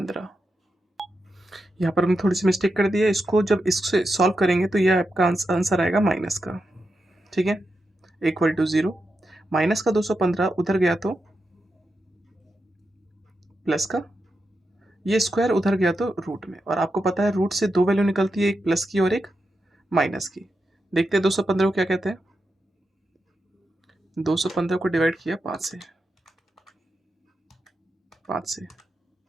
यहाँ पर हमने थोड़ी सी मिस्टेक कर दी है, इसको जब इससे सॉल्व करेंगे तो यह आपका आंसर आएगा माइनस का। ठीक है, इक्वल टू 0, माइनस का 215 उधर गया तो प्लस का, ये स्क्वायर उधर गया तो रूट में, और आपको पता है रूट से दो वैल्यू निकलती है, एक प्लस की और एक माइनस की। देखते हैं 215 को क्या कहते हैं। 215 को डिवाइड किया 5 से, 5 से,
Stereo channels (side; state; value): both; normal; correlation 0.87